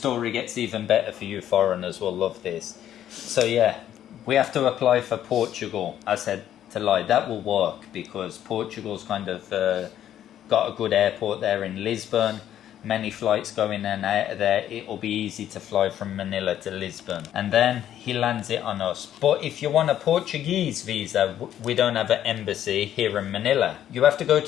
gets even better for you foreigners will love this. So yeah, we have to apply for Portugal. I said to Lai, that will work because Portugal's kind of got a good airport there in Lisbon. Many flights go in and out of there. It'll be easy to fly from Manila to Lisbon. And then he lands it on us. But if you want a Portuguese visa, we don't have an embassy here in Manila. You have to go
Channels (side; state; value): right; quieter; 11.1 dB